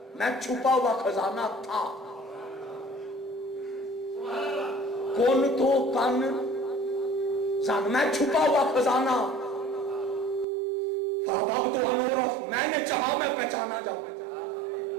میں چھپا ہوا خزانہ تھا، کن تو کنزن میں چھپا ہوا خزانہ، فَأَحْبَبْتُ أَنْ أُعْرَفَ میں نے چاہا میں پہچانا جاؤں،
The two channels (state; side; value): drops out; left; at 10.5 s